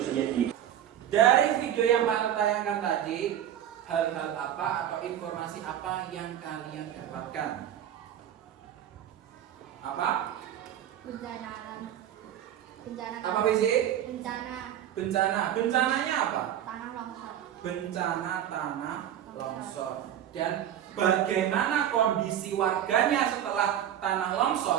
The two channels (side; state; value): left; quieter; 10.7 dB